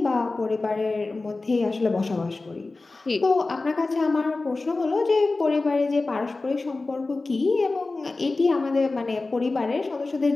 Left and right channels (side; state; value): right; quieter; 3.4 dB